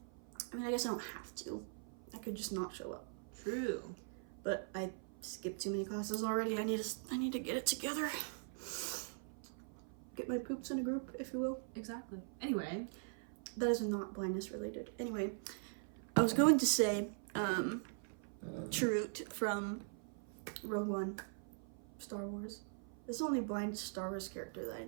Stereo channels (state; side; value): silent; left; 50 dB below the other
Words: I mean, I guess I don't have to. I could just not show up. True. But I skipped too many classes already. I need to get it together. Get my poops in a group, if you will. Exactly. Anyway. That is not blindness related. Anyway, I was going to say, Chirrut from Rogue One, Star Wars. This is the only blind Star Wars character that I